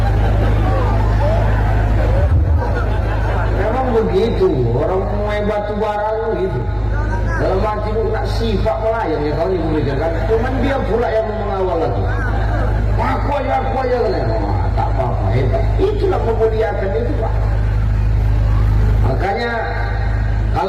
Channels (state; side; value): identical; both; correlation 1.00